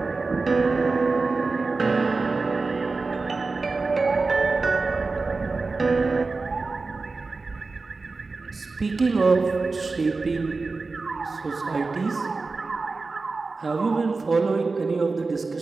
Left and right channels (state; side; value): quieter; left; 3.9 dB